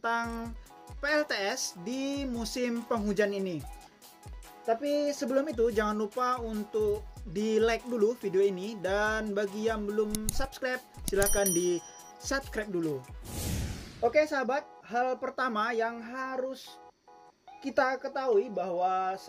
PLTS di musim penghujan ini. Tapi sebelum itu jangan lupa untuk di like dulu video ini, dan bagi yang belum subscribe silahkan di subscribe dulu. Oke sahabat, hal pertama yang harus kita ketahui bahwa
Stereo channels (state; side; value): identical; both; correlation 1.00